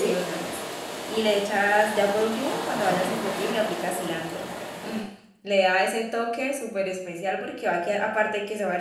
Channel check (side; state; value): both; identical; correlation 1.00